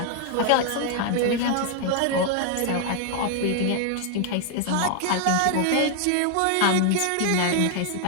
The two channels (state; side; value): different; both; correlation 0.00